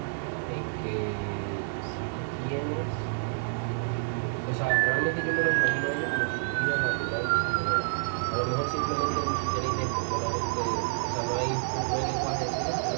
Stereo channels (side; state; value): left; silent; digital silence